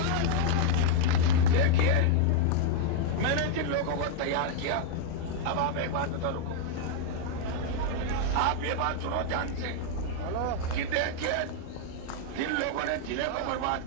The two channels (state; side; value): different; both; correlation 0.00